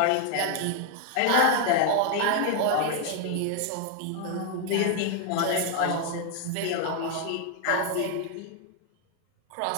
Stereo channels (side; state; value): both; different; correlation 0.01